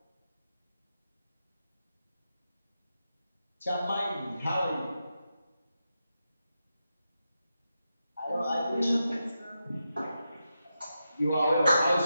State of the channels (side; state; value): both; inverted; correlation -0.88